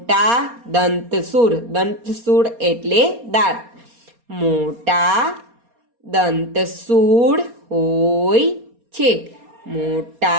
દંતસૂળ. દંતસૂળ એટલે દાંત. મોટા દંતસૂળ હોય છે.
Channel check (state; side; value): late; left; 4.3 ms